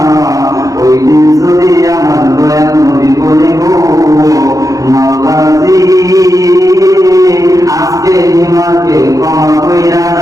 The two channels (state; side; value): late; left; 0.17 ms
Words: ওই দিন যদি আমার দয়াল নবী বলে গো মাওলাজি আজকে হিমাকে ক্ষমা কইরা